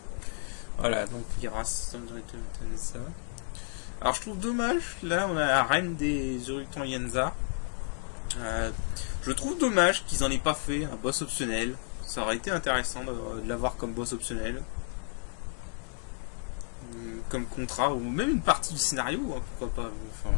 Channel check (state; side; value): silent; right; 57 dB below the other